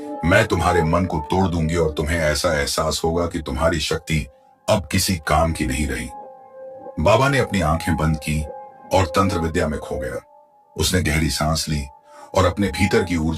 मैं तुम्हारे मन को तोड़ दूंगी और तुम्हें ऐसा एहसास होगा कि तुम्हारी शक्ति अब किसी काम की नहीं रही। बाबा ने अपनी आंखें बंद की और तंत्र विद्या में खो गया। उसने गहरी सांस ली और अपने भीतर की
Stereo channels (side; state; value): both; identical; correlation 1.00